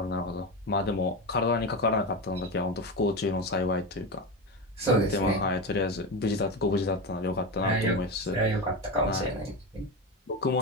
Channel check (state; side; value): normal; both; correlation 0.18